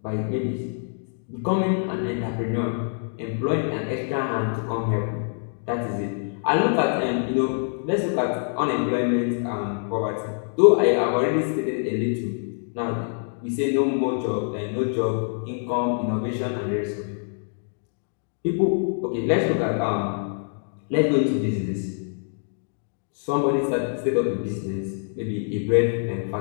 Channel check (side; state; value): right; silent; digital silence